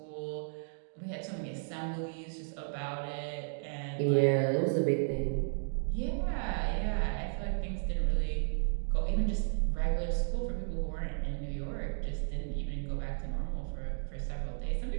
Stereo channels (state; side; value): silent; left; digital silence